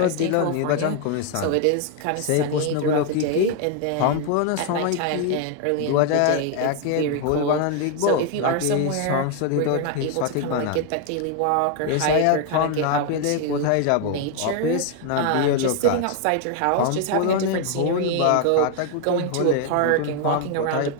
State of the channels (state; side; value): different; both; correlation 0.01